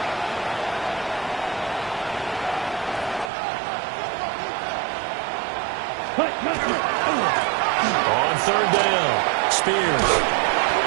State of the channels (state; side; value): drops out; left; at 3.3 s